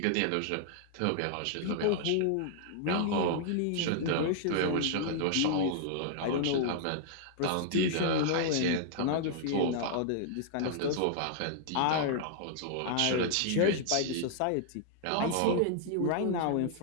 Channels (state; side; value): different; both; correlation -0.01